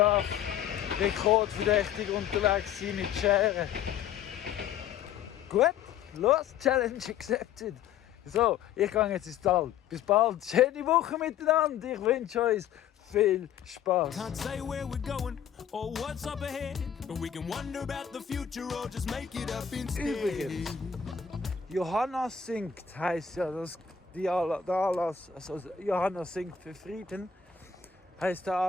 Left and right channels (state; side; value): quieter; right; 8.5 dB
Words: rekordverdächtig unterwegs sein mit Scheren. Gut, los, Challenge accepted. So, ich gehe jetzt ins Tal. Bis bald. Schöne Woche miteinander. Ich wünsche euch viel Spaß. Can't say where we're going or what's up ahead, but we can wonder about the future or just make it up instead. Übrigens, Johanna singt, heisst ja der Anlass, also Johanna singt für Frieden, heisst der